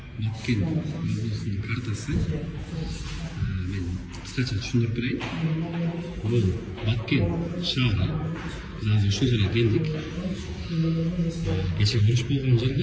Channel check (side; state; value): both; identical; correlation 1.00